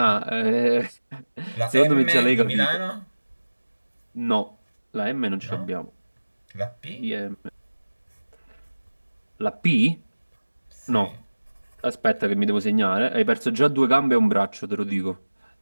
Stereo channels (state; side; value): inverted; both; correlation -1.00